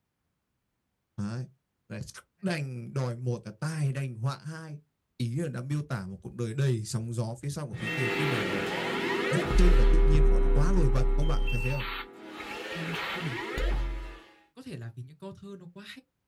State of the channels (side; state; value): both; identical; correlation 1.00